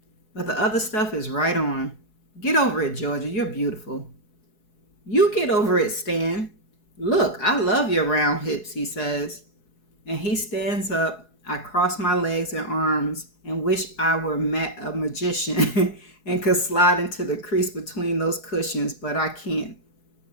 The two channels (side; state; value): right; late; 4.7 ms